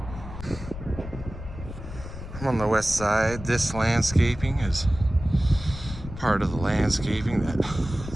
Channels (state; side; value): noise; left; rumble, 11 dB below the sound